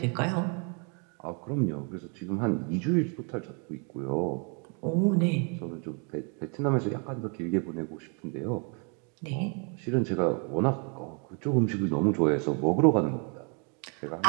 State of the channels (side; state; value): left; quieter; 37.2 dB